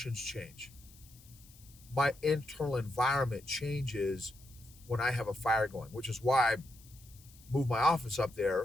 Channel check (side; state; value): left; noise; hiss, 24 dB below the sound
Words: change. My internal environment changes when I have a fire going, which is why I moved my office up